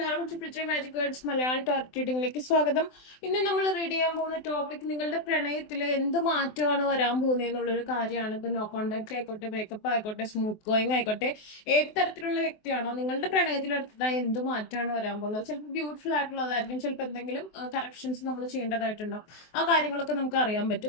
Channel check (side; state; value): right; late; 23 ms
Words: Triple magic words Malayalam target റീഡിംഗിലേക്ക് സ്വാഗതം. ഇന്ന് നമ്മൾ റീഡ് ചെയ്യാൻ പോകുന്ന ടോപ്പിക് നിങ്ങളുടെ പ്രണയത്തിൽ എന്ത് മാറ്റമാണ് വരാൻ പോകുന്നത് എന്നുള്ളൊരു കാര്യമാണ്. ഇപ്പൊ നോ കോണ്ടാക്ട് ആയിക്കോട്ടെ, ബ്രേക്കപ്പ് ആയിക്കോട്ടെ, സ്മൂത്ത് ഗോയിങ് ആയിക്കോട്ടെ, ഏത് തരത്തിലുള്ള വ്യക്തിയാണോ നിങ്ങളുടെ പ്രണയത്തിൽ അടുത്തതായി എന്ത് മാറ്റമാണ് വരാൻ പോകുന്നത്. ചിലപ്പോൾ ബ്യൂട്ടിഫുൾ ആയിട്ടുള്ളതായിരിക്കും, ചിലപ്പോൾ എന്തെങ്കിലും കറക്ഷൻസ് നമ്മൾ ചെയ്യേണ്ടതായിട്ടുണ്ടാവും. ആ കാര്യങ്ങളൊക്കെ നമുക്ക് അറിയാൻ